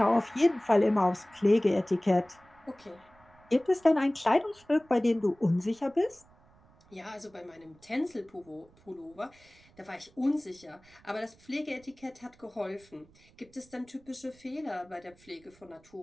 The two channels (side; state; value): right; noise; rumble, 29 dB below the sound